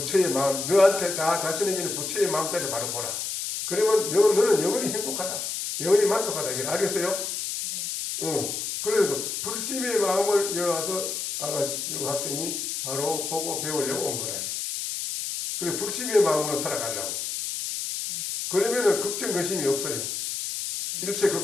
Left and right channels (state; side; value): noise; left; hiss, 4 dB below the sound